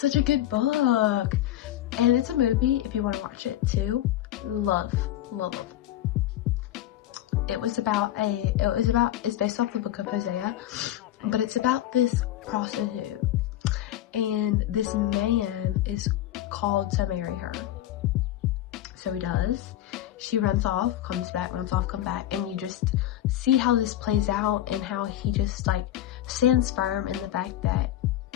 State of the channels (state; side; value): quieter; right; 13.0 dB